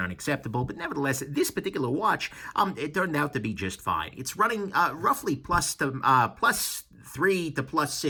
unacceptable, but nevertheless, this particular watch, it turned out to be just fine. It's running roughly plus 3 to plus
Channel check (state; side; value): identical; both; correlation 1.00